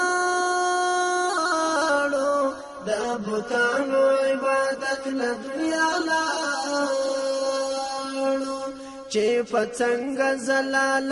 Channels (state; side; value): identical; both; correlation 1.00